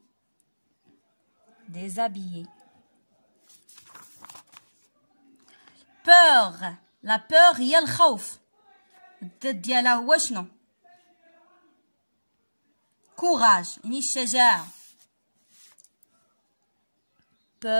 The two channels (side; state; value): both; inverted; correlation -1.00